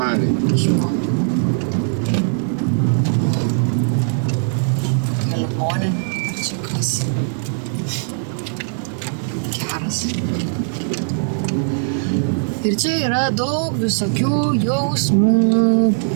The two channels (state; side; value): silent; left; digital silence